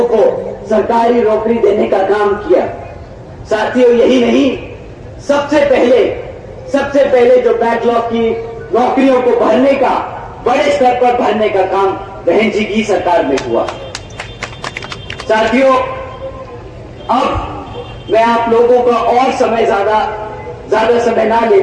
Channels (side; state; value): both; identical; correlation 1.00